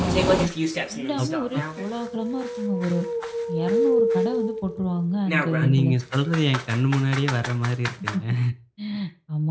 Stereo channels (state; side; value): identical; both; correlation 1.00